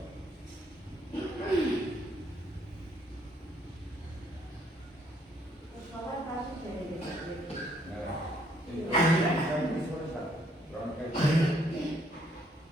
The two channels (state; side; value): normal; both; correlation 0.68